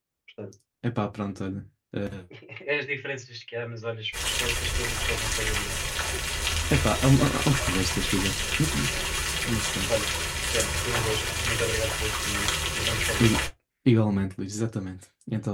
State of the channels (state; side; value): identical; both; correlation 1.00